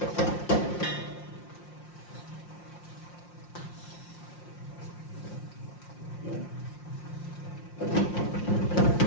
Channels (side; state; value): right; late; 5.7 ms